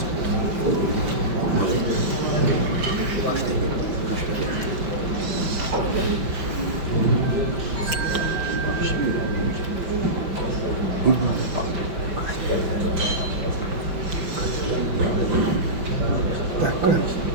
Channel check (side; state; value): left; late; 5.4 ms